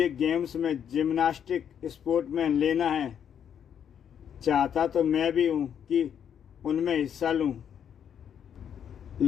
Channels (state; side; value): quieter; right; 8.6 dB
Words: गेम्स में जिम्नास्टिक स्पोर्ट में लेना है। चाहता तो मैं भी हूँ कि उनमें हिस्सा लूँ,